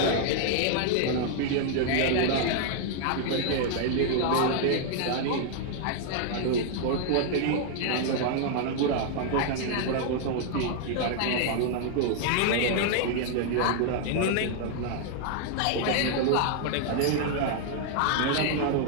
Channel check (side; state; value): both; different; correlation 0.00